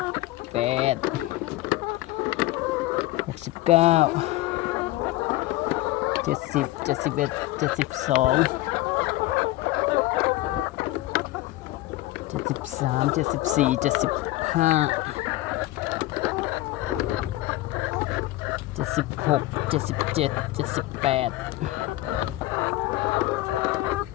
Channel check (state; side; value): quieter; right; 17.6 dB